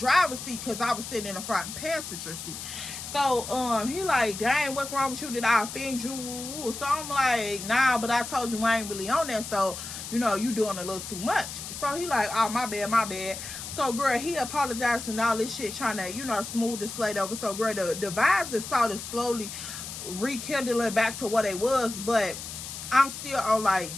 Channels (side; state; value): left; noise; hiss, 9 dB below the sound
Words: seat because I was sitting in the front passenger seat. So he like, dang, what's wrong with you? Did I offend you? So I'm like, nah, but I told you I ain't really on that. So, you know, you doing a little too much. So he like, oh, my bad, my bad. So, girl, he apologized and all this shit, trying to, you know, smooth the slate over. So, girl, the vibes is started slowly rekindling back to what it was. But I'm still on, like,